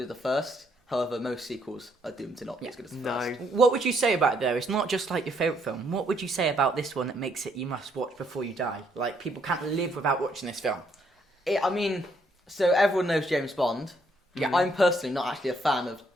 as the first. However, most sequels are doomed to not be as good as the first. What would you say about it though? It's not just like your favourite film. What would you say about this one that makes it you must watch before you die? Like people can't live without watching this film. I mean, so everyone knows James Bond. Yeah. I'm personally not actually a fan of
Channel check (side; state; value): both; normal; correlation 0.71